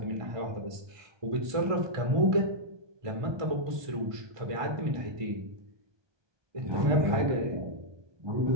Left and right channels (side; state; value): left; late; 1.2 ms